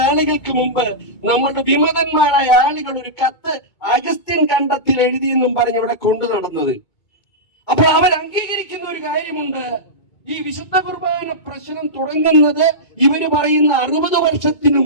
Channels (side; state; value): right; late; 2.2 ms